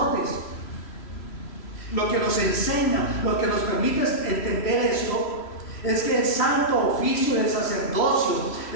Lo que nos enseña, lo que nos permite entender esto, es que el santo oficio del sacerdocio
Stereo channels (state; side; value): late; right; 3.0 ms